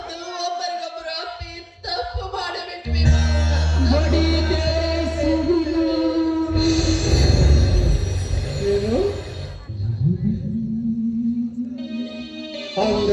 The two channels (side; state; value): both; identical; correlation 1.00